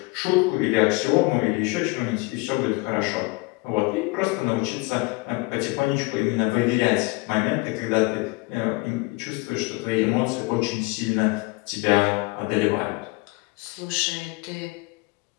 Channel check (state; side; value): quieter; right; 25.0 dB